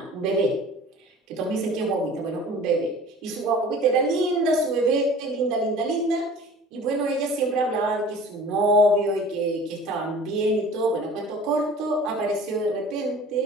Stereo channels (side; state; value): both; normal; correlation 0.44